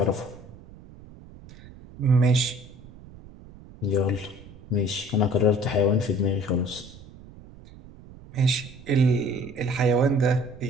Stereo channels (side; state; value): right; noise; rumble, 20 dB below the sound